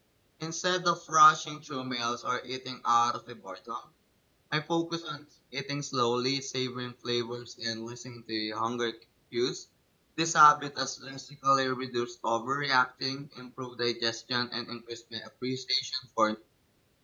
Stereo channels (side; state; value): both; identical; correlation 1.00